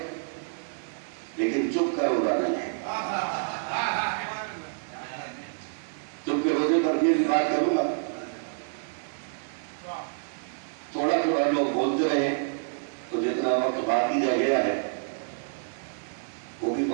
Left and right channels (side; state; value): left; silent; digital silence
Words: لیکن چپ کا روزہ نہیں ہے. چپ کے روزے پر بھی بات کروں گا. تھوڑا تھوڑا لوگ بولتے رہے تو جتنا وقت باقی رہ گیا ہے وہ بھی